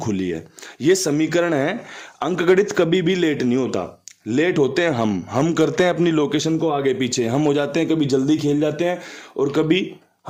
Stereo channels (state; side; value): identical; both; correlation 1.00